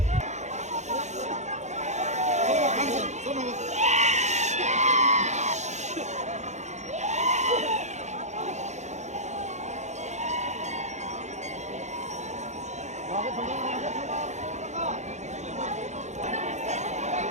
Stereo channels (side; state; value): left; late; 0.33 ms